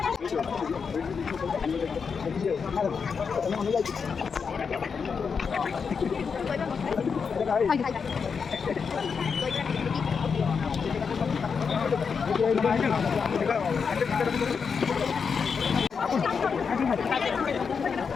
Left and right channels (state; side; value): quieter; right; 5.9 dB